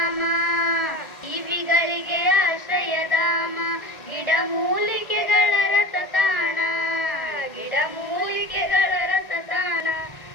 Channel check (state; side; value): late; right; 1.6 ms